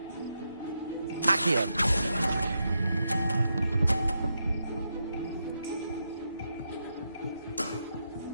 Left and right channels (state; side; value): inverted; both; correlation -0.84